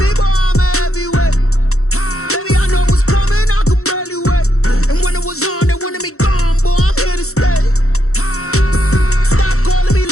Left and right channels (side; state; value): right; late; 0.64 ms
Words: boy, I'm a heavyweight. Baby, I know what's coming, I could barely wait. And when it was on, they wanted me gone, boy, I'm here to stay. Stop calling me